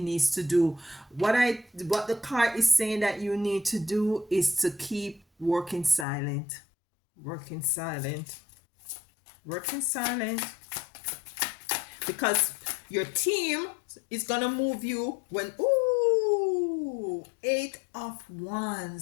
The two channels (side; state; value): right; drops out; at 6.1 s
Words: to do. What the card is saying that you need to do is to keep working silent. Working silent. Because your team is gonna move you when 8 of